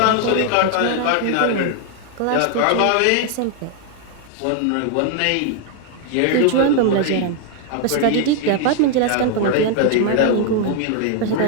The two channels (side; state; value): both; different; correlation 0.00